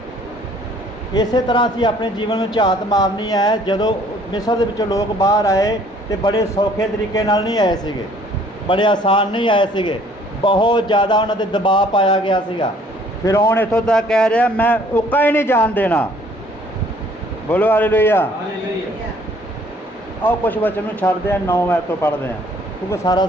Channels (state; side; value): normal; both; correlation 0.58